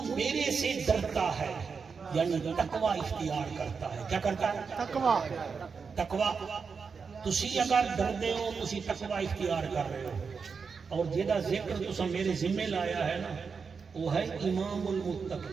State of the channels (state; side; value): quieter; left; 5.5 dB